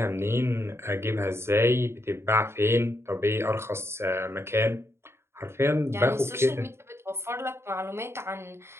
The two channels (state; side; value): late; left; 0.12 ms